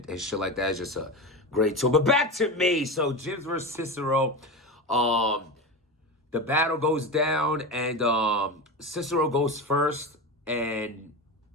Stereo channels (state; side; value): normal; both; correlation 0.22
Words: shit like that, is just a great tool. But back to me. So Jims versus Cicero. The battle goes down, and Cicero goes first, and